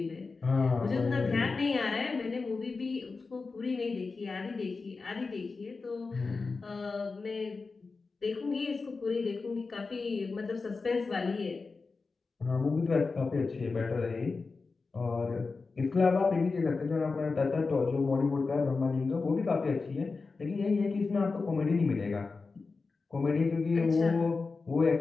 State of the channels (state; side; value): quieter; right; 4.2 dB